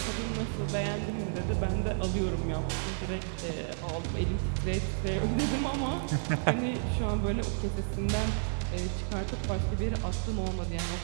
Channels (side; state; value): left; silent; 57 dB below the other